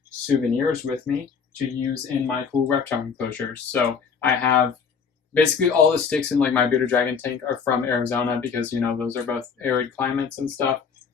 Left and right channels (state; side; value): quieter; right; 6.1 dB